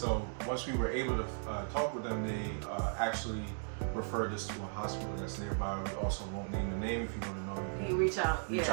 once we were able to talk with them, they actually referred us to a hospital that's nearby. We also won't name the name. If you want to know, you can reach out. Reach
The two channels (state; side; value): silent; left; digital silence